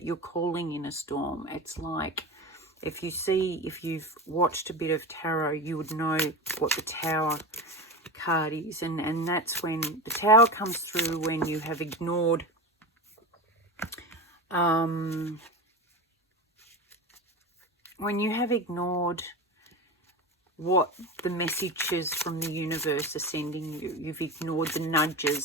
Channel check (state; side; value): normal; both; correlation 0.24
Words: you're calling in a storm. It's like if you've watched a bit of tarot, you would know what the Tower card is. And that's when the Tower comes through, when you have ignored what the messages from the universe are sending you. You've ignored the